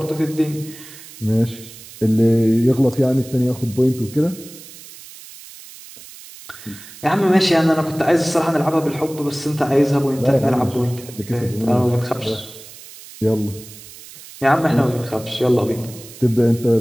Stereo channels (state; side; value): noise; right; hiss, 18 dB below the sound